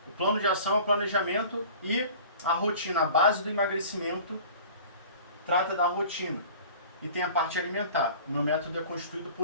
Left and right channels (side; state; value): both; inverted; correlation -0.43